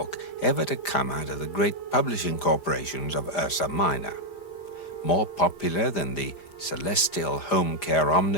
ever to come out of the great publishing corporations of Ursa Minor. More popular than the Celestial Home Care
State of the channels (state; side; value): late; right; 5.0 ms